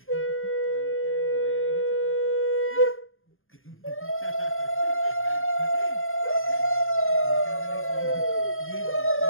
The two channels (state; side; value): late; right; 0.60 ms